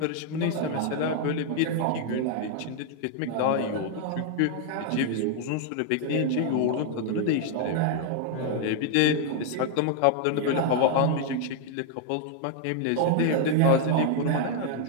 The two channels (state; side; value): different; both; correlation 0.00